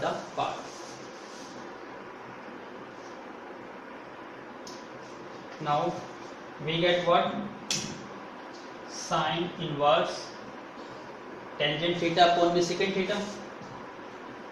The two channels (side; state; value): both; identical; correlation 1.00